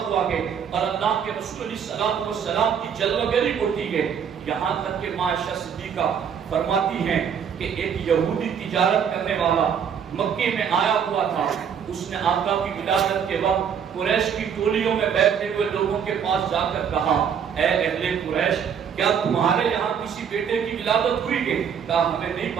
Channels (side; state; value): left; quieter; 7.6 dB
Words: ہے، اور اللہ کے رسول علیہ السلام کی جلوگری ہوتی ہے۔ یہاں تک کہ عائشہ صدیقہ فرماتی ہیں کہ ایک یہودی تجارت کرنے والا مکے میں آیا ہوا تھا، اس نے آقا کی ولادت کے وقت قریش کی ٹولیوں میں بیٹھے ہوئے لوگوں کے پاس جا کر کہا، اے اہل قریش، کیا تمہارے یہاں کسی بیٹے کی ولادت ہوئی ہے؟ کہا ہمیں نہیں